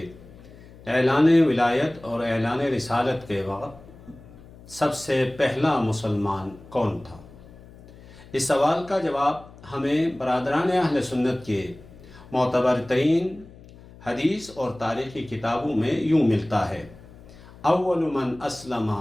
اعلان ولایت اور اعلان رسالت کے وقت سب سے پہلا مسلمان کون تھا؟ اس سوال کا جواب ہمیں برادران اہل سنت کے معتبر ترین حدیث اور تاریخی کتابوں میں یوں ملتا ہے: اول من اسلم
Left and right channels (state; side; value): noise; left; hum, 20 dB below the sound